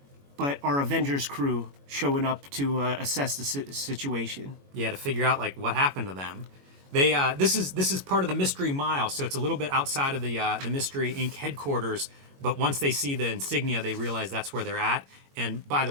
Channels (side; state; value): left; late; 21 ms